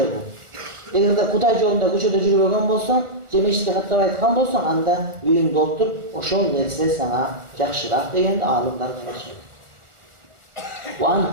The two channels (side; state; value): left; late; 1.4 ms